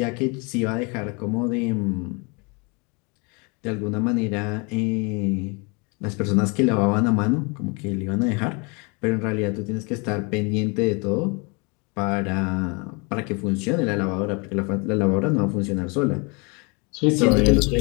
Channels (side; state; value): right; quieter; 30.8 dB